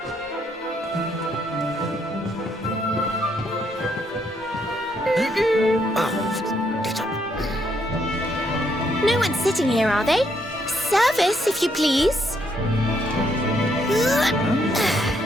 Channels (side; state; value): both; normal; correlation 0.73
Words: No one's sitting here, are they? Service, if you please.